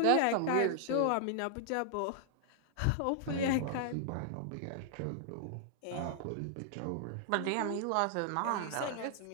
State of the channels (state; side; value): different; both; correlation -0.01